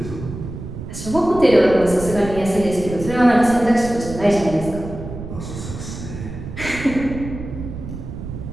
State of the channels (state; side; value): noise; right; rumble, 9 dB below the sound